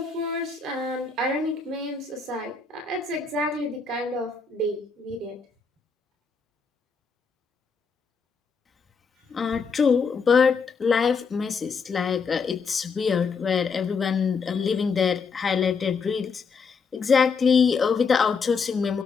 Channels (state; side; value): quieter; right; 5.2 dB